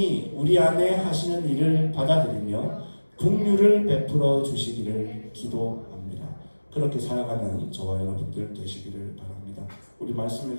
우리 안에 하시는 일을 받아들이며 긍휼을 베풀어 주시기를 기도합니다. 그렇게 살아가는 저와 여러분들 되시기를 바랍니다. 우리 말씀을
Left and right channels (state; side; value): inverted; both; correlation -1.00